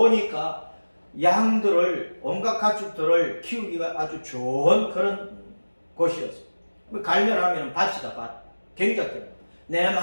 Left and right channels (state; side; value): inverted; both; correlation -1.00